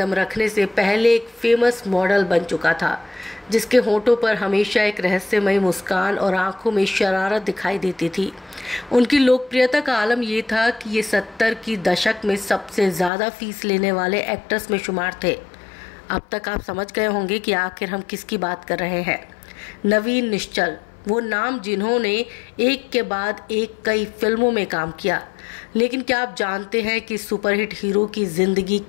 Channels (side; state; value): right; drops out; at 13.1 s